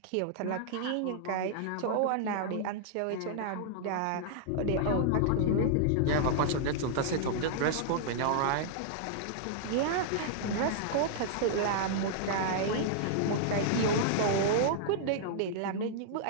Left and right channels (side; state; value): both; different; correlation -0.01